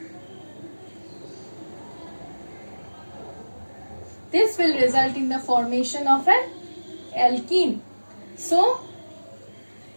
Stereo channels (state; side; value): inverted; both; correlation -1.00